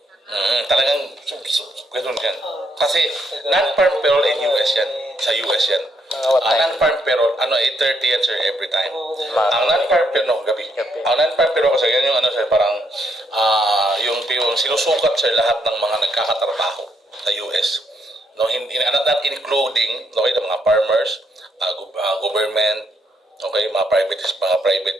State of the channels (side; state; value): both; normal; correlation 0.75